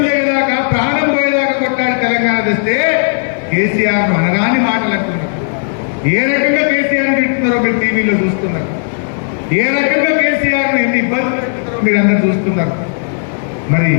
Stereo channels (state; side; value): silent; right; digital silence